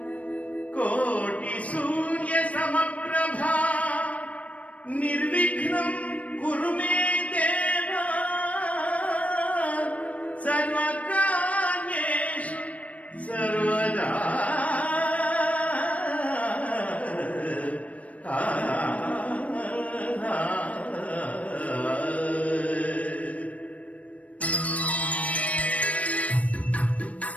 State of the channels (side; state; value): right; late; 0.066 ms